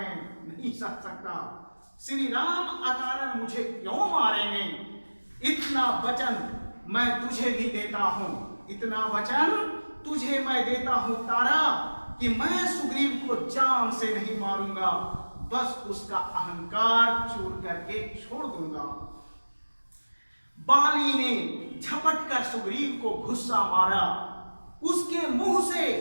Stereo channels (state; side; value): inverted; both; correlation -1.00